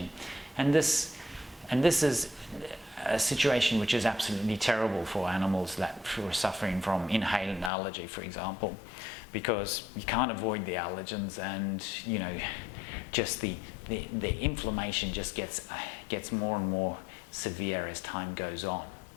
And this is a situation which is absolutely terrible for animals that are suffering from inhalant allergy, for example, because you can't avoid the allergens, and just the inflammation just gets more and more severe as time goes on.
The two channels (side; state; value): right; drops out; at 7.7 s